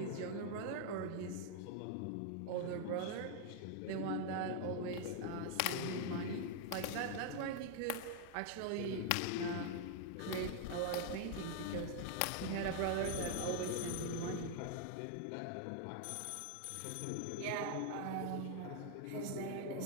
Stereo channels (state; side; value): different; both; correlation 0.00